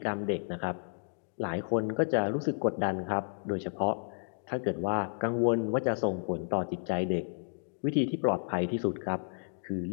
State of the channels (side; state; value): right; silent; digital silence